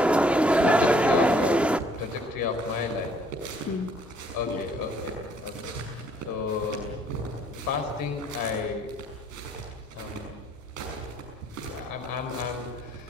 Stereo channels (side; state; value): both; normal; correlation 0.64